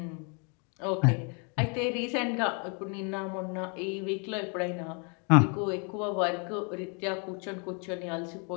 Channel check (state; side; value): quieter; right; 36.4 dB